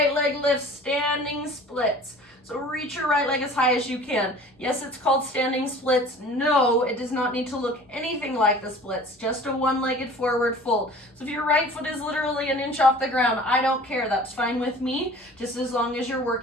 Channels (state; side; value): normal; both; correlation 0.45